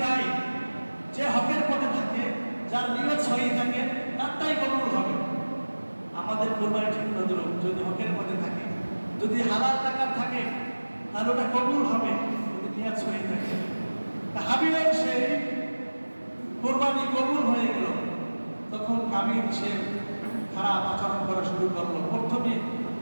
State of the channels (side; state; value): both; inverted; correlation -1.00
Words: তাই? যে হকের পথে থাকে, যার নিয়ত সহি থাকে, তারটাই কবুল হবে। আমাদের কোরবানি ঠিক নজরুল যদি হকের পথে থাকে, যদি হালাল টাকা থাকে, তাহলে ওটা কবুল হবে, যদি নিয়ত সহি থাকে। হাবিলের সেই কোরবানি কবুল হয়ে গেল। তখন কাবিল সে খারাপ আচরণ করা শুরু করলো। প্রথমে